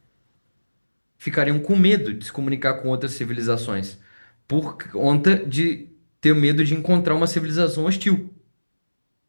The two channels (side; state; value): both; inverted; correlation -1.00